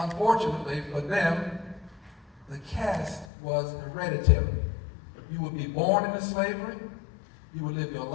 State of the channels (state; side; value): drops out; right; at 3.3 s